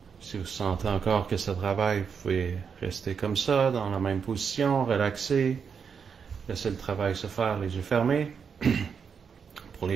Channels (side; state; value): left; quieter; 6.5 dB